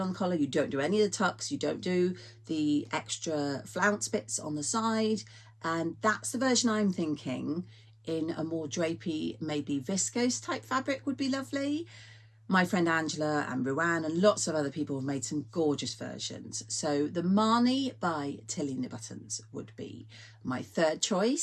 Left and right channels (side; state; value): both; identical; correlation 1.00